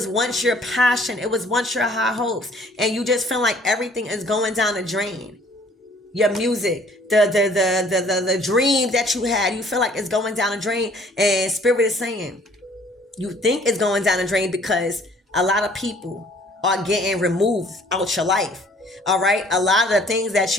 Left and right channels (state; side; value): normal; both; correlation 0.57